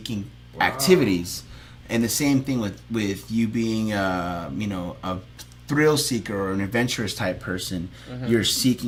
activities. And the same thing with you being a thrill seeker or an adventurous type person. You're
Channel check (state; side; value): identical; both; correlation 1.00